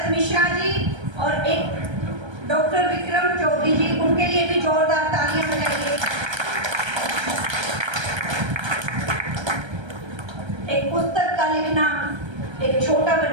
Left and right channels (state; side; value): late; left; 1.3 ms